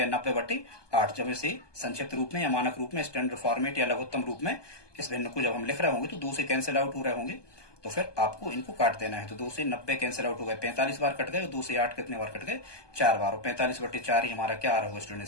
90/8। जब इसे संक्षिप्त रूप में या मानक रूप में, स्टैंडर्ड फॉर्मेट या लघुत्तम रूप में इस भिन्न को जब हम लिख रहे होंगे तो 2 से कैंसिल आउट हो रहे होंगे, तो फिर आपको इनको काट देना है। तो 2 से 90 कैंसिल आउट हो गए, 45 बार कट गए, और 2 से 8 कितने बार कट गए, 4 बार, और 45/4 ही हमारा क्या आ रहा होगा स्टूडेंट,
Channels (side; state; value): right; late; 1.2 ms